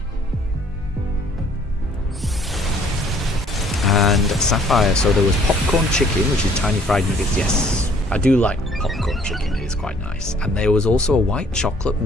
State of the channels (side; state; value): both; normal; correlation 0.59